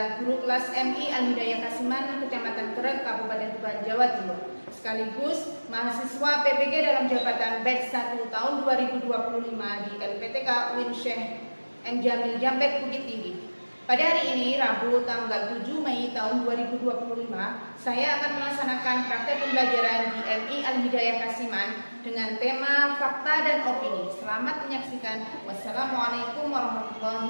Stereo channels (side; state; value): both; inverted; correlation -1.00